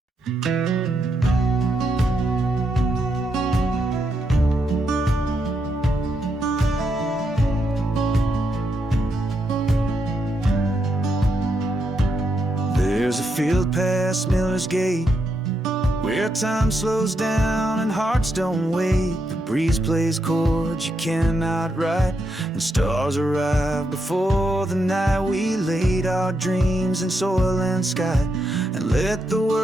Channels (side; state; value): both; normal; correlation 0.81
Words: There's a field past Miller's Gate, where time slows down and hearts don't wait. The breeze plays chords you cannot write, and stars arrive before the night. We laid our dreams in soil and sky, and let the